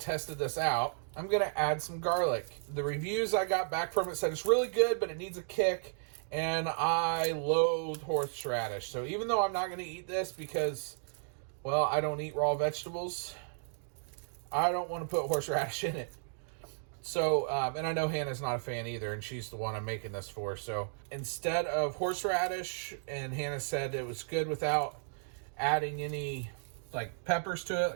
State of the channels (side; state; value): left; silent; digital silence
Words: this out, I'm going to add some garlic. The reviews I got back from it said it's really good, but it needs a kick. And I loathe horseradish. So even though I'm not going to eat this because, well, I don't eat raw vegetables, I don't want to put horseradish in it. So, and I know Hannah's not a fan either, and she's the one I'm making this for. So instead of horseradish, and Hannah said it was good without adding any like peppers to it,